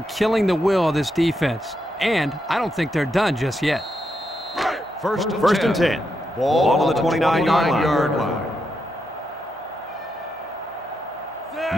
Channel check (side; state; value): both; normal; correlation 0.83